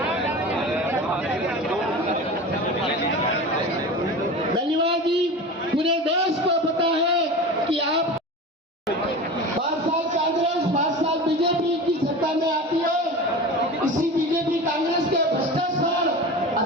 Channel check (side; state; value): both; normal; correlation 0.31